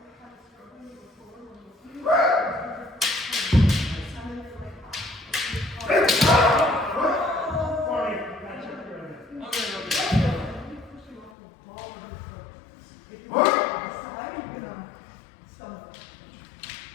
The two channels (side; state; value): right; drops out; at 11.3 s